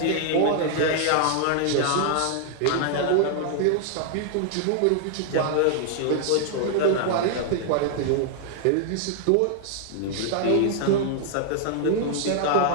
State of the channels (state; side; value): different; both; correlation 0.00